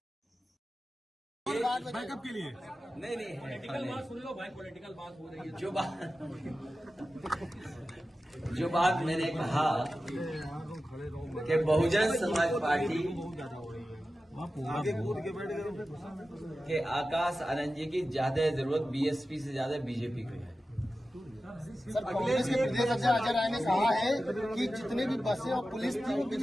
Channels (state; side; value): normal; both; correlation 0.94